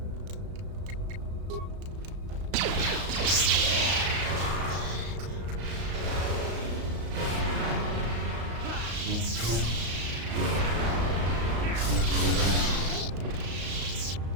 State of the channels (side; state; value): left; late; 35 ms